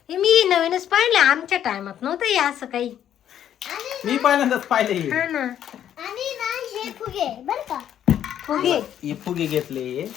हे मी नवीनच पाहिलं, आमच्या टायमात नव्हतं हे असं काही. आणि मी पहिल्यांदाच पाहिले हे. हा ना आणि ना हे फुगे बर का फुगे हे फुगे घेतले,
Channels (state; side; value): quieter; right; 10.3 dB